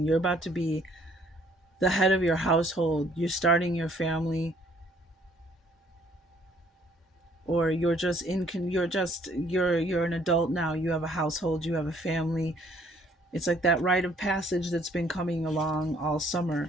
you're about to be the head of your household. You're starting your family, or you're an adult now. You have a household, you have a family. It's like that rite of passage that's been coming along all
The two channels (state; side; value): normal; both; correlation 0.62